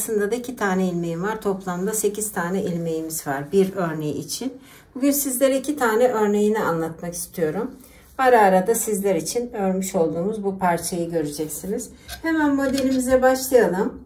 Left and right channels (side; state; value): both; identical; correlation 1.00